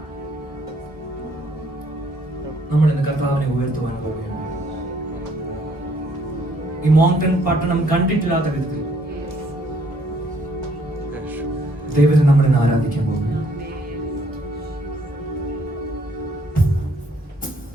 നമ്മൾ ഇന്ന് കർത്താവിനെ ഉയർത്തുവാൻ പോവുകയാണ്. ഈ മോങ്ടൺ പട്ടണം കണ്ടിട്ടില്ലാത്ത വിധത്തിൽ ദൈവത്തെ നമ്മൾ ഇന്ന് ആരാധിക്കാൻ പോകുന്നു.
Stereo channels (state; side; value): normal; both; correlation 0.65